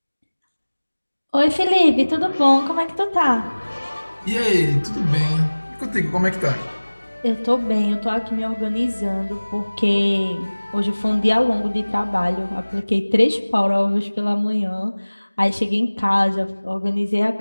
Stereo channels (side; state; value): both; inverted; correlation -1.00